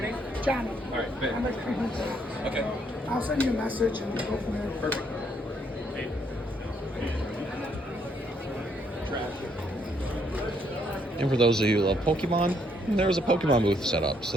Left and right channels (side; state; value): both; normal; correlation 0.71